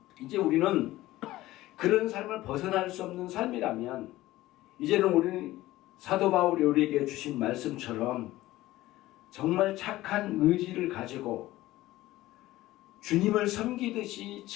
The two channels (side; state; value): right; quieter; 16.7 dB